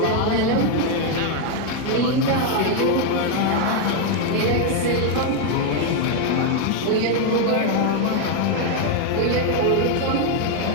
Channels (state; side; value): different; both; correlation 0.01